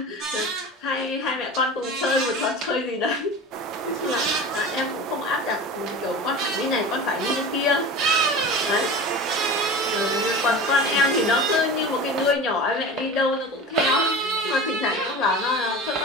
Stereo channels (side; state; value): both; normal; correlation 0.33